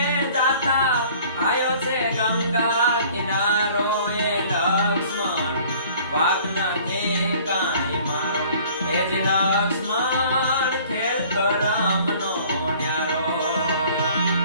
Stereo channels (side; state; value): both; inverted; correlation -0.52